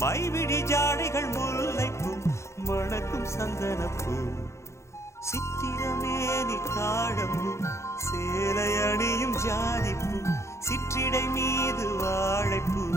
மைவிடி ஜாடைகள் முல்லைப்பூ மணக்கும் சந்தனப்பூ சித்திரமேனி தாழம்பூ சேலை அணியும் ஜாதிப்பூ சிற்றிடை மீது வாழைப்பூ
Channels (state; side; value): late; right; 0.14 ms